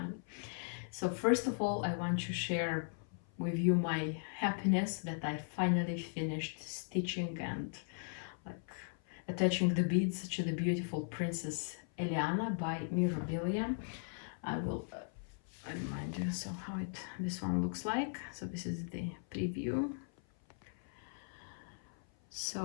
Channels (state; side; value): silent; right; 52 dB below the other